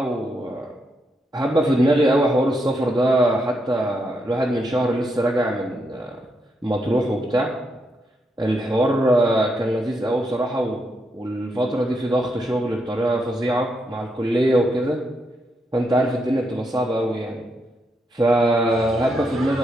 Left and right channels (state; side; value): normal; both; correlation 0.80